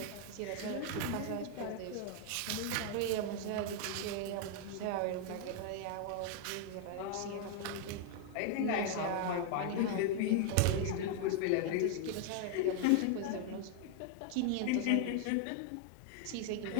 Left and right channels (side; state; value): both; different; correlation 0.00